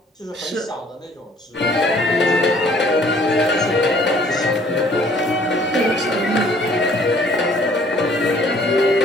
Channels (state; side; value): normal; both; correlation 0.57